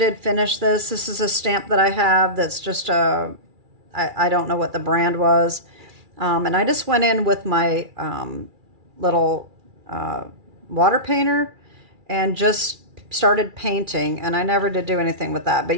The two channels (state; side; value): late; left; 2.3 ms